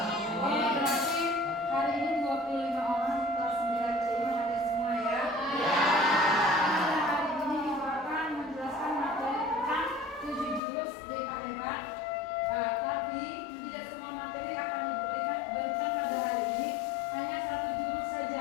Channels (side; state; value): right; drops out; at 10.6 s